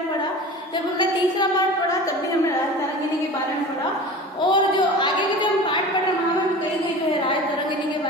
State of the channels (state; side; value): normal; both; correlation 0.36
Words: पढ़ा, जब हमने तीसरा पार्ट पढ़ा तब भी हमने राज तरंगिणी के बारे में पढ़ा और जो आगे के जो हम पार्ट पढ़ रहे हैं वहां में कई गई जो है राज तरंगिणी के